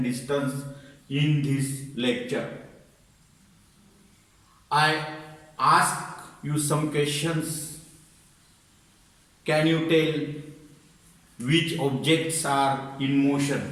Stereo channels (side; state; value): both; identical; correlation 1.00